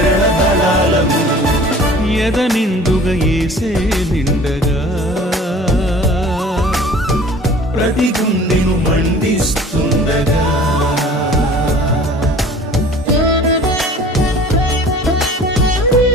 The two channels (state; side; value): normal; both; correlation 0.46